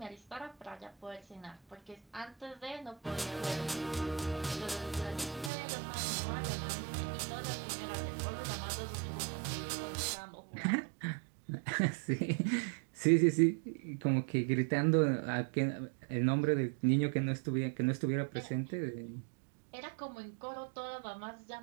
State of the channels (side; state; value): left; drops out; at 5.5 s